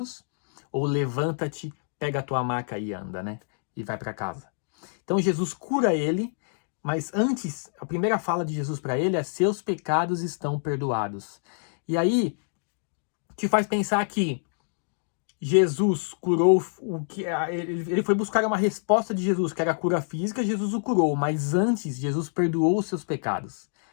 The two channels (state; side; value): silent; right; digital silence